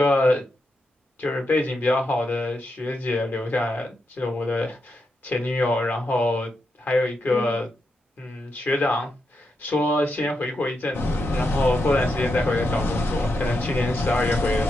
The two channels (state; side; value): normal; both; correlation 0.84